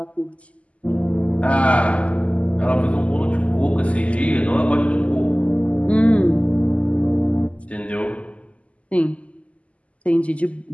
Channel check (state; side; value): late; right; 0.064 ms